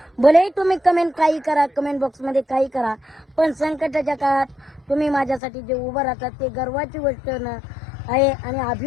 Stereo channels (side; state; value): right; drops out; at 5.4 s